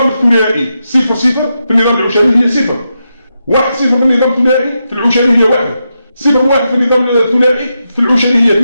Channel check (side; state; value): both; inverted; correlation -0.86